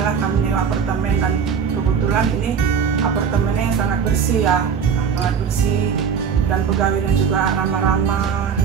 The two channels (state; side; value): quieter; left; 6.9 dB